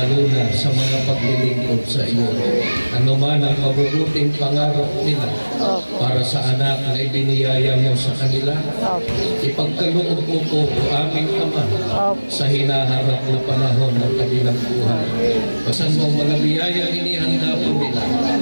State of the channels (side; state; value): both; inverted; correlation -1.00